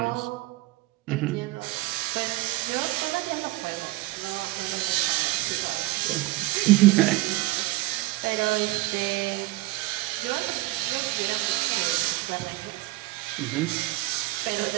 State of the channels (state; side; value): quieter; left; 19.1 dB